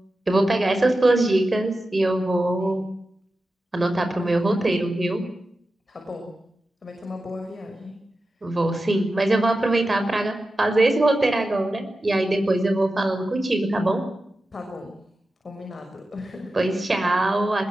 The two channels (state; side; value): normal; both; correlation 0.92